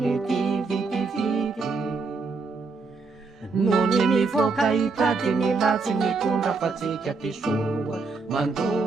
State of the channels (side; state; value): left; quieter; 4.2 dB